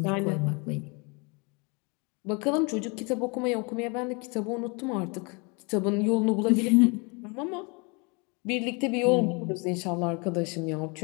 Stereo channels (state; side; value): quieter; right; 30.9 dB